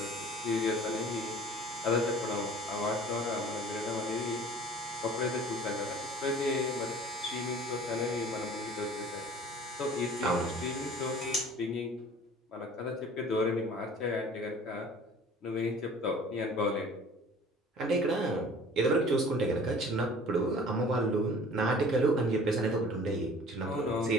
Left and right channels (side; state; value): both; normal; correlation 0.46